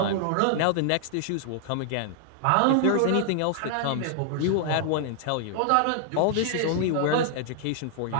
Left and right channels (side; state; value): both; different; correlation -0.01